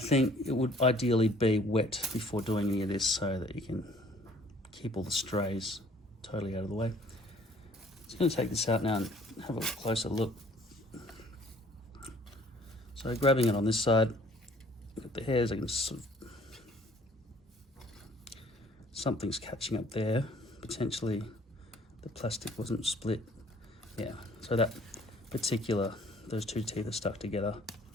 it would ideally be wet before doing any of this so that you can keep all the strays totally out of the way. I'm just going to take this out now and have a closer look. So grabbing it on this side, got the hairs, I can sort of, something's catching up there. Potentially the plastic wasn't split. Yeah, so that particular, those two teeth are stuck together.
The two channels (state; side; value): normal; both; correlation 0.56